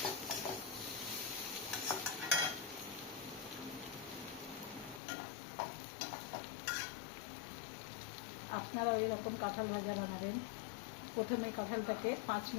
আপনারা এরকম কাঁঠাল ভাজা বানাবেন। প্রথমে কাঁঠালটাকে 5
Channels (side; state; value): right; drops out; at 5.0 s